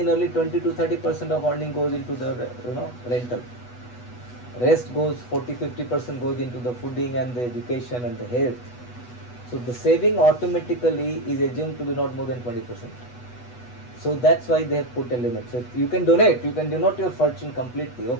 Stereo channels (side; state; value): right; late; 8.1 ms